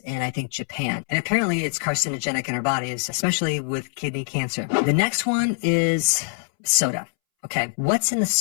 and I think Japan. And apparently it's carcinogenic in our bodies, especially with kidney cancer. The next one is soda. Okay, what's in the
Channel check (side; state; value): right; silent; 63 dB below the other